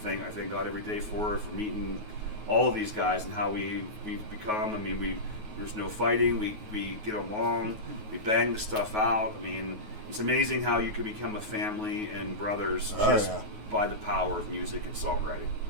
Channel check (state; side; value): late; left; 9.4 ms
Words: God every day for meeting all of these guys and how we've become. I mean, there's no fighting, we get along, we bang the stuff out. I mean, it's amazing how you can become a family and brothers by the power of music and songwriting.